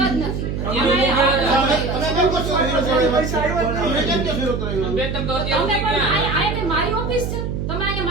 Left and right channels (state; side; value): noise; right; hum, 3 dB below the sound